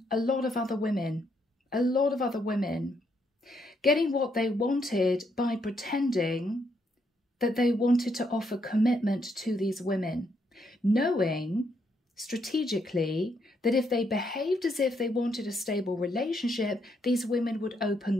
a lot of other women, getting what they wanted by pretending that they wanted to offer commitment to these women, knowing strategically that if they behaved as if they wanted a stable relationship, these women would open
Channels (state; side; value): normal; both; correlation 0.76